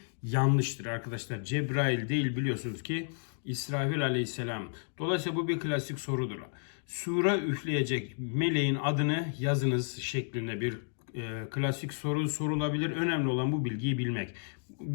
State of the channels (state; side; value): silent; right; digital silence